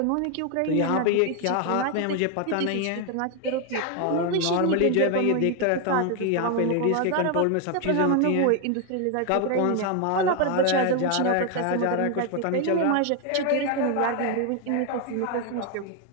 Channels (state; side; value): different; both; correlation 0.01